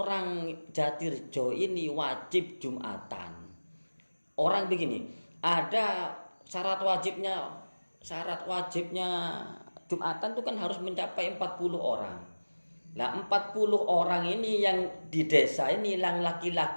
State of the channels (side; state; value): both; inverted; correlation -1.00